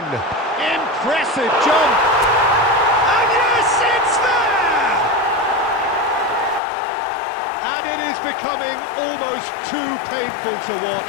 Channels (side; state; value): right; drops out; at 6.6 s